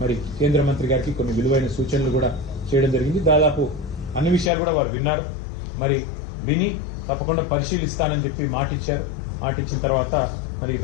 మరి కేంద్ర మంత్రి గారికి కొన్ని విలువైన సూచనలు కూడా చేయడం జరిగింది. దాదాపు అన్ని విషయాలు కూడా వారు విన్నారు. మరి విని తప్పకుండా పరిశీలిస్తానని చెప్పి మాటిచ్చారు. మాటిచ్చిన తర్వాత మరి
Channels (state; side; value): drops out; right; at 4.5 s